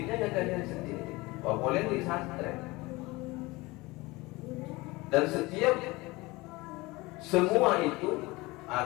ya kalian sendiri. Boleh di pesantren. Dan semua itu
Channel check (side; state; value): right; quieter; 22.3 dB